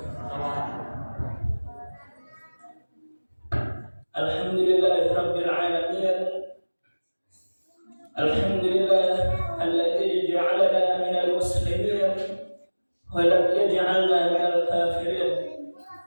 Alhamdulillahirabbil alamin. Alhamdulillah alladzi ja'alana minal muslimin wa lam yaj'alna minal kafirin.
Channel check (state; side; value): inverted; both; correlation -1.00